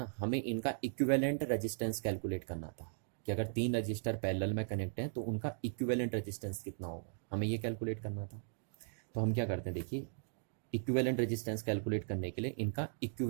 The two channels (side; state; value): left; silent; digital silence